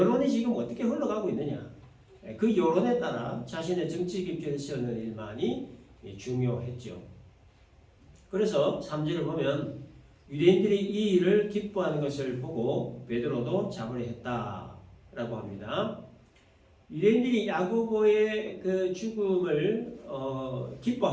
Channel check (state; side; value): identical; both; correlation 1.00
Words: 지금 어떻게 흘러가고 있느냐, 그 여론에 따라 자신의 정치 입지를 세우는 일만이 중요했죠. 그래서 3절을 보면 유대인들이 이 일을 기뻐하는 것을 보고 베드로도 잡으려 했다라고 합니다. 유대인들이 야고보의 그 죽음을